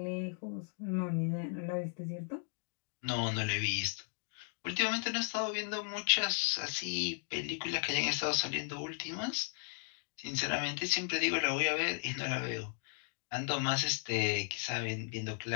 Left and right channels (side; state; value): right; silent; 54 dB below the other